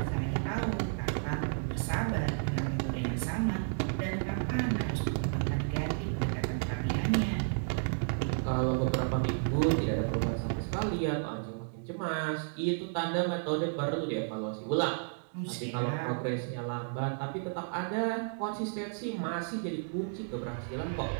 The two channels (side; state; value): left; silent; digital silence